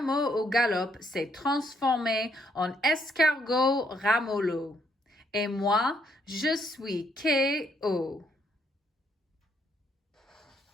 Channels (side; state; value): both; normal; correlation 0.72